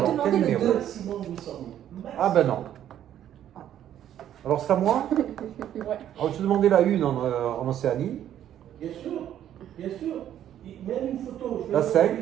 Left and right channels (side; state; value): left; quieter; 10.9 dB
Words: demander quel le numéro? 2. Ah ben non. Alors c'est à moi? Ouais. Alors je te demandais la une en Océanie. Bien sûr, bien sûr. Même une photo. Je La vais 5.